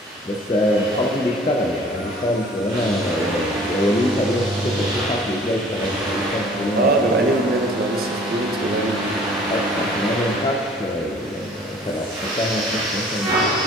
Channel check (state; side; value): normal; both; correlation 0.52